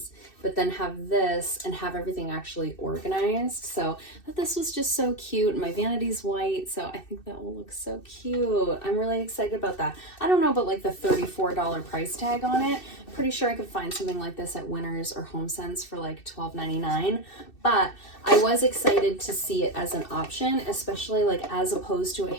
but then have this and have everything actually organized. So I thought this was just so cute, and my vanity's white, so I think that will look so cute. I'm really excited about that. I don't know about like the $34 price tag on it. Pretty sure I could find something like this at Winners or HomeSense for like $12.99, but I was excited to see it as an option, especially like as opposed to a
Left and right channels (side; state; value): right; late; 2.6 ms